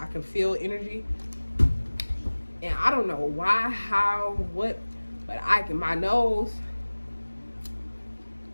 I can feel energy. And I don't know why, how, what. But my nose,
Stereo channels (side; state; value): both; inverted; correlation -1.00